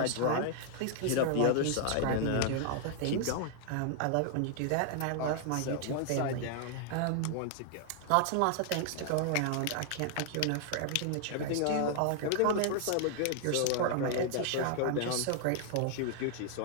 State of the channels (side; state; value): both; different; correlation 0.00